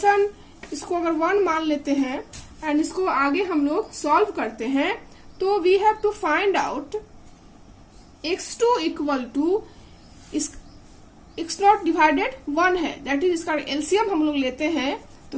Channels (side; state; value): both; identical; correlation 1.00